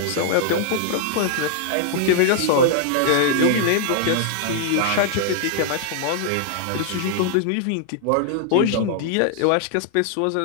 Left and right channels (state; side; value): different; both; correlation -0.01